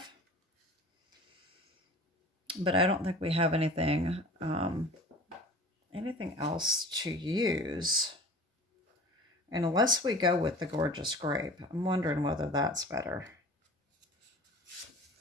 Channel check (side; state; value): both; normal; correlation 0.41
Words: But I don't think we have anything else to use. And unless we go with the Gorgeous Grape, I'm wondering whether that's better.